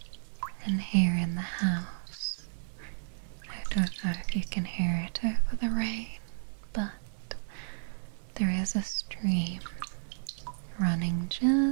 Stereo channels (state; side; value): silent; left; digital silence